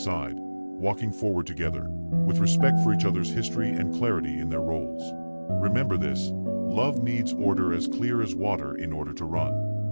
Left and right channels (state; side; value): inverted; both; correlation -1.00